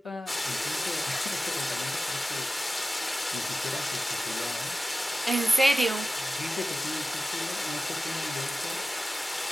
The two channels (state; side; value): normal; both; correlation 0.95